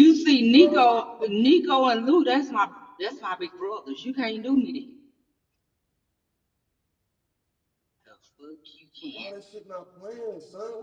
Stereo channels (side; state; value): both; identical; correlation 1.00